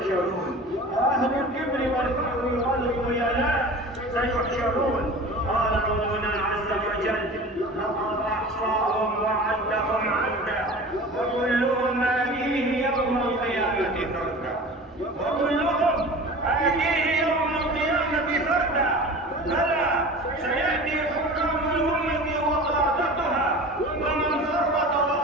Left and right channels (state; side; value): normal; both; correlation 0.37